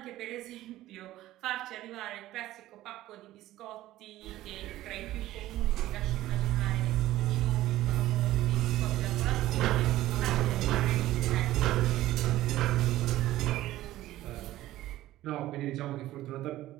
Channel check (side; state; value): left; quieter; 15.3 dB